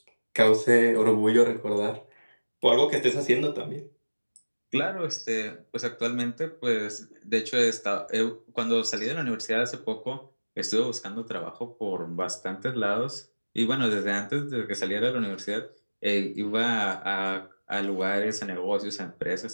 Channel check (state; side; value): inverted; both; correlation -1.00